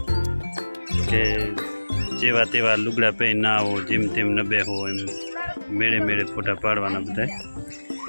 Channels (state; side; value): inverted; both; correlation -1.00